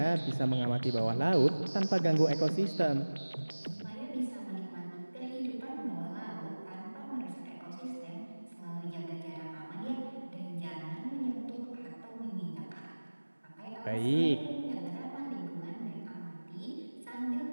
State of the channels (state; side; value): inverted; both; correlation -1.00